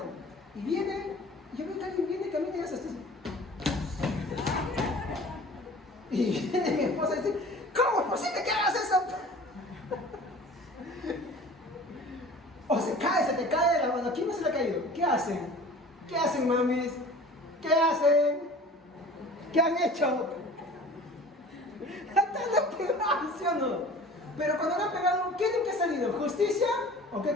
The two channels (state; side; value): normal; both; correlation 0.43